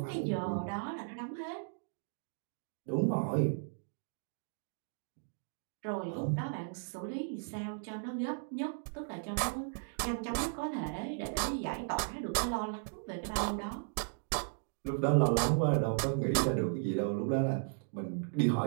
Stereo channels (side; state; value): left; silent; digital silence